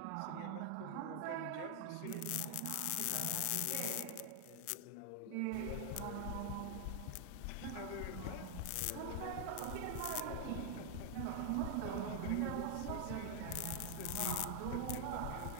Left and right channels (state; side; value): different; both; correlation 0.00